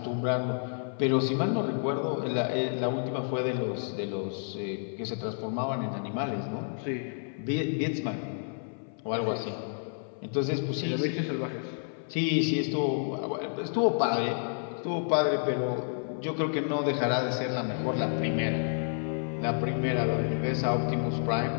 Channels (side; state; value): right; silent; 56 dB below the other